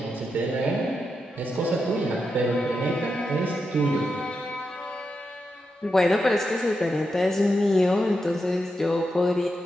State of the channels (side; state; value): both; normal; correlation 0.86